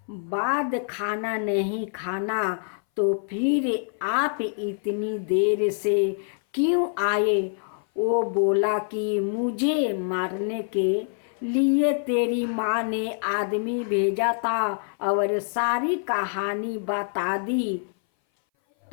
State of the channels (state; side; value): silent; right; 59 dB below the other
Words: बाद खाना नहीं खाना, तो फिर आप इतनी देर से क्यों आए? वो बोला कि मुझे मारने के लिए तेरी माँ ने आदमी भेजा था और सारी कहानी बता दी।